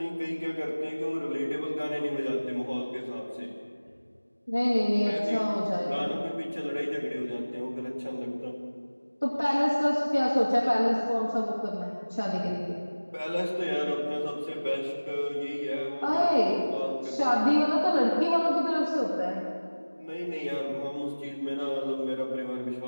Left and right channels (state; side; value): inverted; both; correlation -1.00